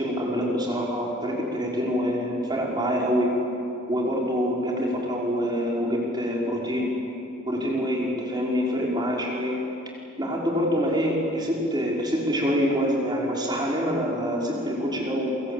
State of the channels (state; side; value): normal; both; correlation 0.55